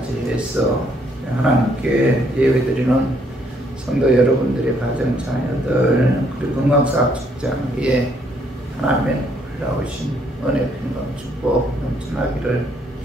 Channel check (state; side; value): normal; both; correlation 0.69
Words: 하나님께 예배드리는 성도 여러분들의 가정 자녀들 그리고 건강사학 직장에 하나님의 놀라우신 은혜, 평강, 축복 넘쳐나기를